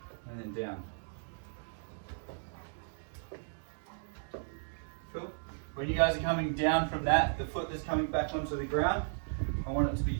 and then down. Cool. When you guys are coming down from that, the foot that's coming back onto the ground, I want it to be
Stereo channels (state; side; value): silent; left; digital silence